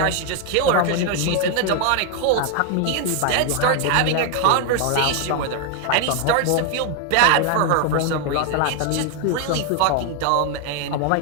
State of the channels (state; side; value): different; both; correlation 0.00